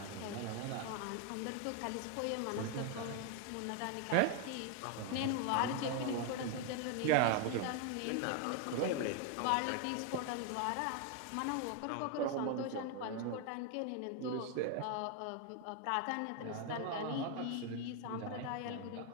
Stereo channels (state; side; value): different; both; correlation 0.01